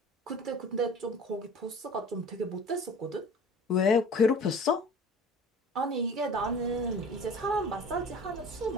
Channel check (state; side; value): normal; both; correlation 0.42